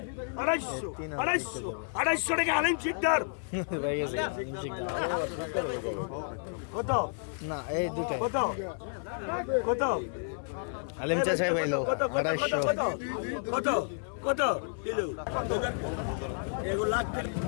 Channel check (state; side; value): silent; right; 55 dB below the other